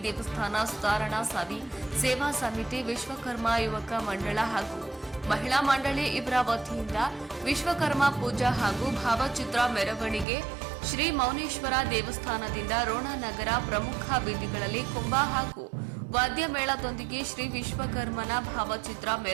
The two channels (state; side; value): drops out; left; at 10.2 s